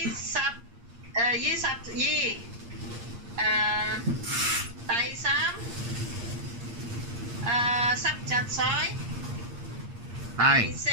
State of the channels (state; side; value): late; left; 8.5 ms